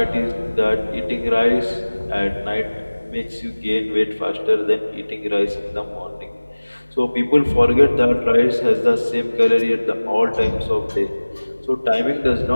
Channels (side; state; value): both; inverted; correlation -1.00